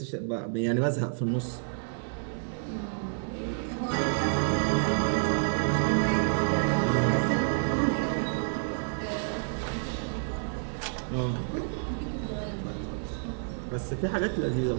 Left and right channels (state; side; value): silent; left; digital silence